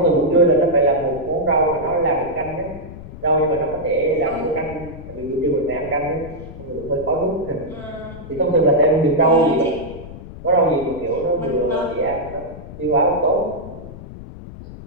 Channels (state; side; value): noise; left; rumble, 14 dB below the sound